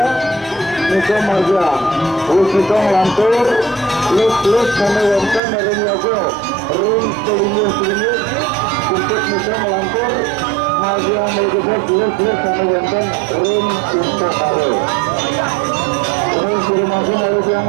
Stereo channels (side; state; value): left; drops out; at 5.4 s